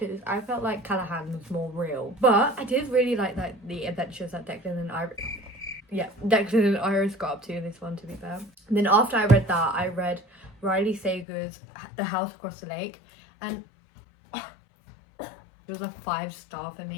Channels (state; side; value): drops out; right; at 11.2 s